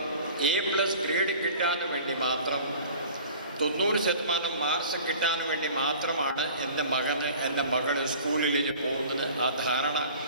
A+ ഗ്രേഡ് കിട്ടാൻ വേണ്ടി മാത്രം 90% മാർക്സ് കിട്ടാൻ വേണ്ടി മാത്രമാണ് എൻ്റെ മകൾ സ്കൂളിലേക്ക് പോകുന്നത്. ആ ധാരണ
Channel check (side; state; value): both; inverted; correlation -0.44